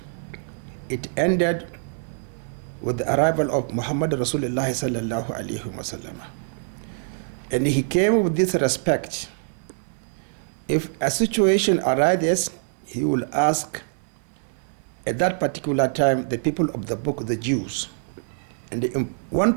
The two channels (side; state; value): left; silent; digital silence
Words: It ended with the arrival of Muhammad Rasulullah sallallahu alayhi wasallam. And he came with this respect. If a situation arises, he will ask at that particular time the people of the book, the Jews, and in one